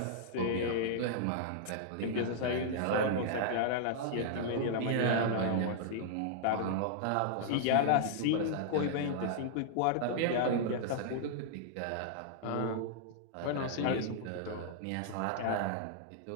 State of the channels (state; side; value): different; both; correlation -0.01